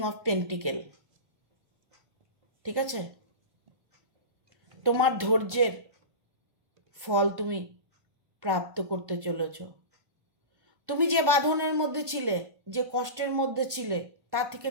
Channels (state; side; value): late; left; 1.1 ms